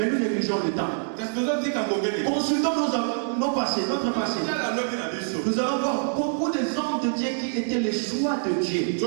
nous négligeons le temps. Consultons nos passés, notre passé. Nous allons voir beaucoup de hommes de Dieu qui étaient les choix de Dieu. Ils ne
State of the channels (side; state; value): left; silent; digital silence